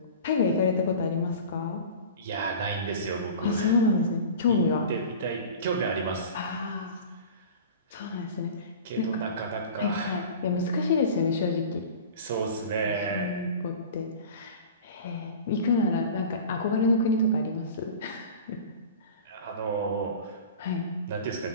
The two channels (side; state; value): both; inverted; correlation -0.37